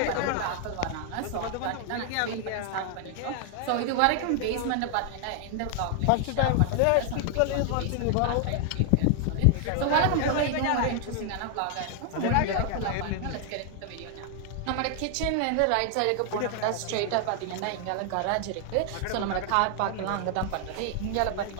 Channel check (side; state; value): both; different; correlation 0.00